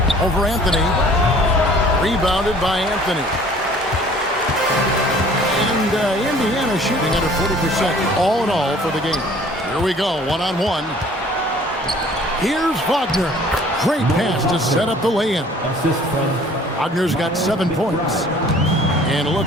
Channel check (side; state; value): both; normal; correlation 0.52